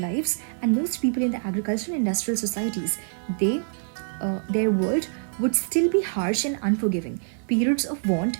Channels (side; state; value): left; silent; 61 dB below the other